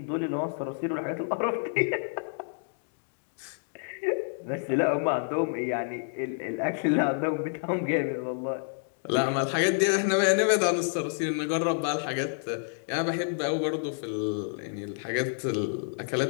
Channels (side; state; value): right; silent; digital silence